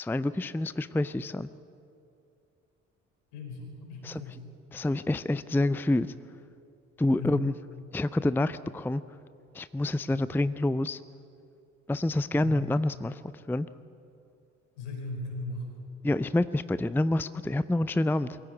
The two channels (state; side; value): normal; both; correlation 0.91